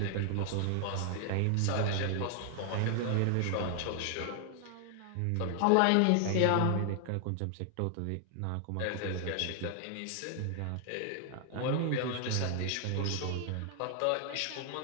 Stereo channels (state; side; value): different; both; correlation 0.00